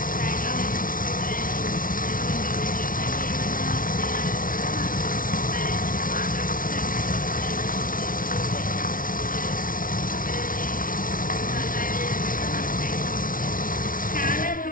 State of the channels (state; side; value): late; right; 0.40 ms